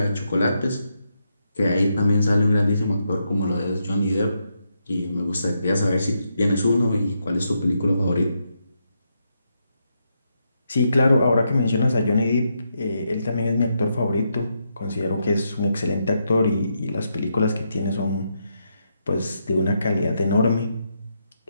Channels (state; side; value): inverted; both; correlation -0.81